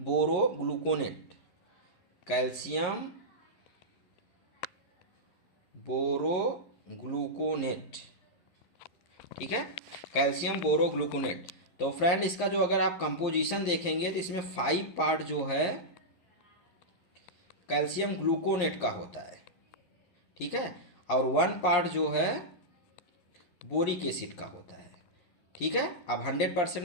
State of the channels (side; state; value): right; late; 11 ms